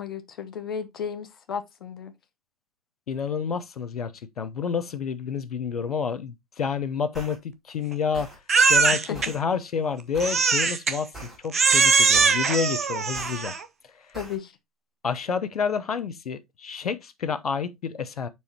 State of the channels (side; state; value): both; normal; correlation 0.55